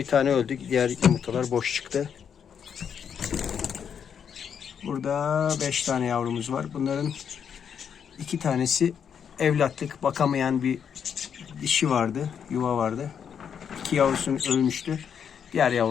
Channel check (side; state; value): right; quieter; 7.7 dB